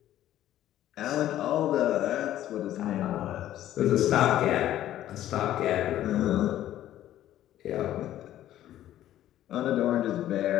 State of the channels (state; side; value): quieter; right; 12.8 dB